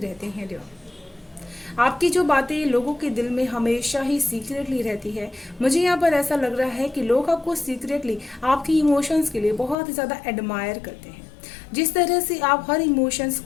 हैं डियर। आपकी जो बातें लोगों के दिल में हमेशा ही सीक्रेटली रहती है। मुझे यहाँ पर ऐसा लग रहा है कि लोग आपको सीक्रेटली आपकी इमोशंस के लिए बहुत ही ज़्यादा एडमायर करते हैं। जिस तरह से आप हर इमोशंस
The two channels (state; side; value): drops out; right; at 9.8 s